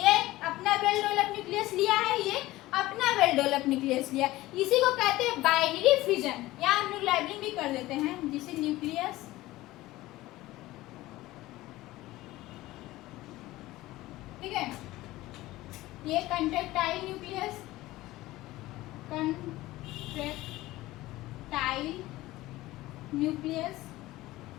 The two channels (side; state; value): right; quieter; 17.6 dB